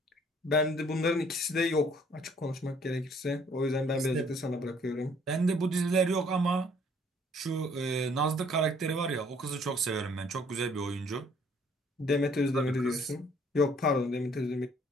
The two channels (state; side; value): normal; both; correlation 0.61